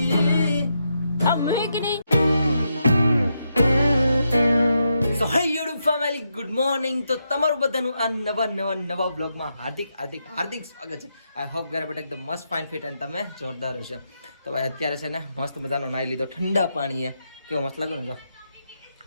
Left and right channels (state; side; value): inverted; both; correlation -0.82